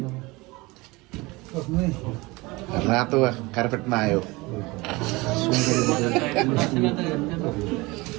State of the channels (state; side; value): quieter; left; 23.1 dB